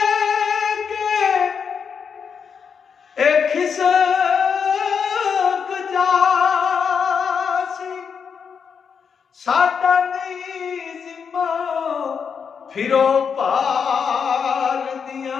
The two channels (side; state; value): right; quieter; 6.5 dB